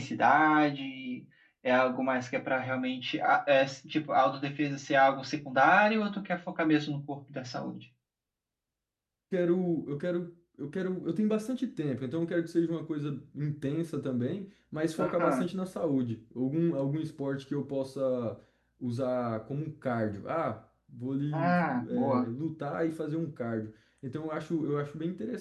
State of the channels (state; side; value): identical; both; correlation 1.00